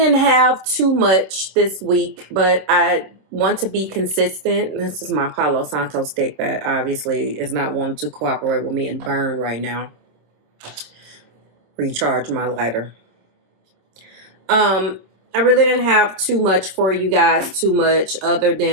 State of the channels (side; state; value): left; late; 26 ms